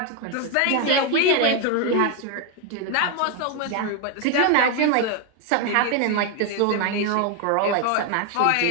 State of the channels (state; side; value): different; both; correlation 0.01